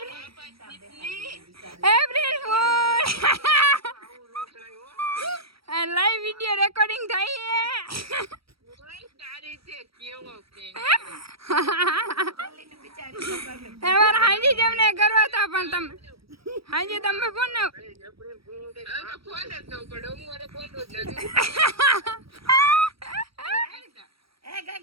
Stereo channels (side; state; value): left; late; 0.75 ms